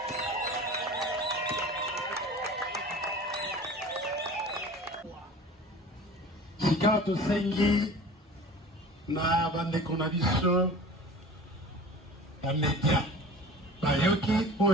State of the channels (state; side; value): normal; both; correlation 0.40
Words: Sika tosengi na bandeko na biso bamedia bayoki